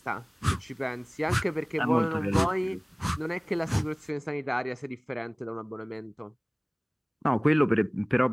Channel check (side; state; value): both; identical; correlation 1.00